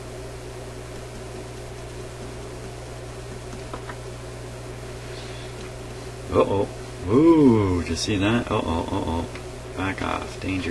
Uh-oh. Ooh, did you see that? Uh-oh, uh-oh. Back off.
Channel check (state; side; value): identical; both; correlation 1.00